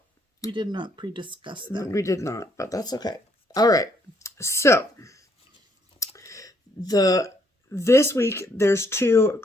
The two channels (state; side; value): normal; both; correlation 0.70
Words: We did not pre-discuss that. We did not, but that's okay. All right. So. This week, there's 2